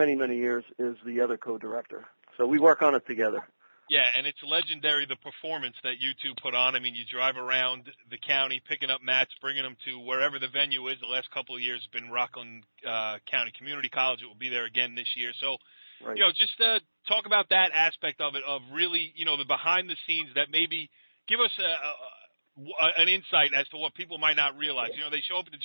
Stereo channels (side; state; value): both; inverted; correlation -1.00